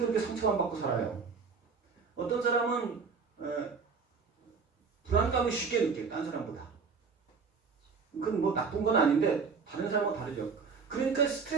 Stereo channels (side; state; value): left; quieter; 5.3 dB